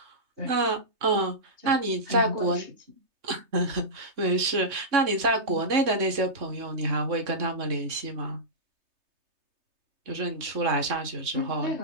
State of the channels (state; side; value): late; left; 3.6 ms